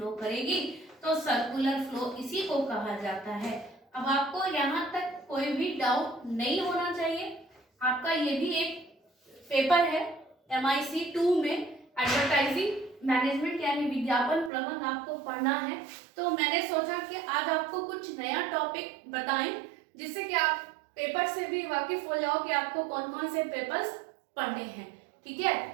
करेगी, तो सर्कुलर फ्लो इसी को कहा जाता है। अब आपको यहाँ तक कोई भी डाउट नहीं होना चाहिए। आपका ये भी एक पेपर है MIC 2 में, एडवर्टाइजिंग मैनेजमेंट यानी विज्ञापन प्रबंधन आपको पढ़ना है। तो मैंने सोचा कि आज आपको कुछ नया टॉपिक बताएं, जिससे कि आप पेपर से भी वाकिफ हो जाओ कि आपको कौन कौन से पेपर्स पढ़ने हैं। ठीक है,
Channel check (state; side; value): drops out; left; at 14.5 s